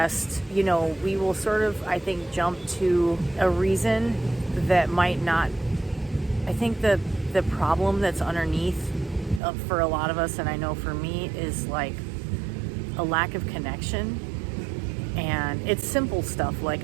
You know, we will sort of, I think, jump to a reason that might not. I think the problem that's underneath for a lot of us, and I know for me, is like a lack of connection. And it's simple stuff like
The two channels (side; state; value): left; drops out; at 9.4 s